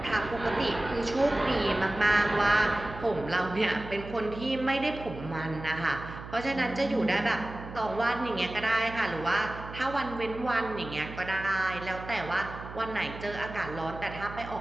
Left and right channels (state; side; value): noise; right; hum, 12 dB below the sound